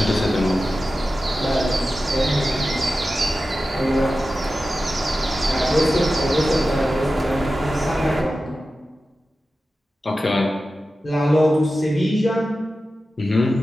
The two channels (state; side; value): normal; both; correlation 0.93